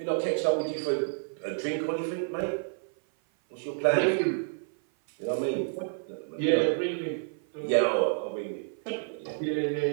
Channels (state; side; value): silent; left; 56 dB below the other